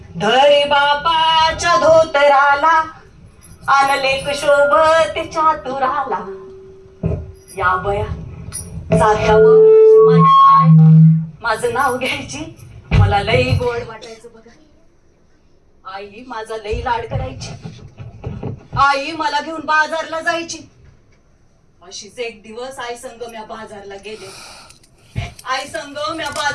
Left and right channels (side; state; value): both; identical; correlation 1.00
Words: धरी बापाच्या धोतराला, आणलेक शोभत चातुराला. या बया जात्यावर माझी आई माझं नाव घ्यायची. मला लई गोड वाटायचं बघा. आई माझा लई लाड करायची. आई मला घेऊन बाजारला जायची. अशीच एक दिवस आई संग म्या बाजारला गेले. आई संग म्या